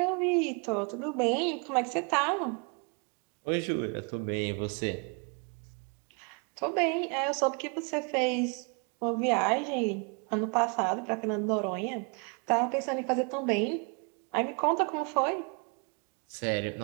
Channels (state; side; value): quieter; left; 34.7 dB